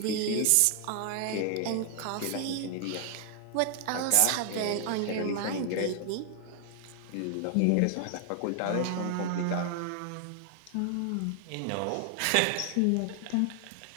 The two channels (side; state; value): both; different; correlation 0.00